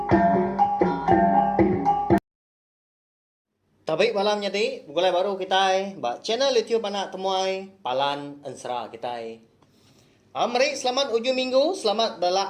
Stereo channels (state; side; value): identical; both; correlation 1.00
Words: Tabik malam nyati, bukulai baru kita channel YouTube anak temuai Palan Ensera Kitai. Mari selamat ujung minggu, selamat